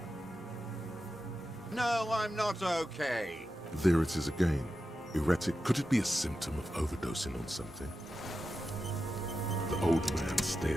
No, I'm not okay. There it is again. Erratic. Could it be a symptom of overdosing on something? The old man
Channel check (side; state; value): both; normal; correlation 0.91